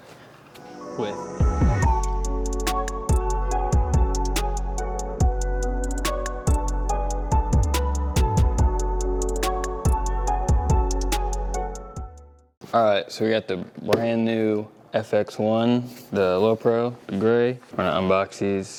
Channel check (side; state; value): both; identical; correlation 1.00